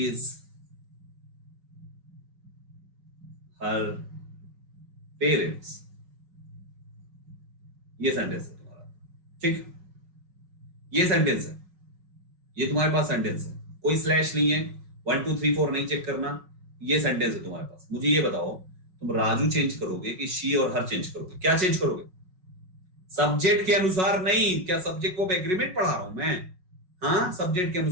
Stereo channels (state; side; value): late; left; 5.5 ms